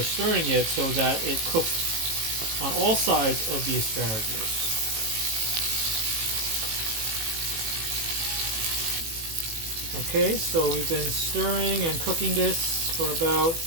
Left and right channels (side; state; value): left; late; 18 ms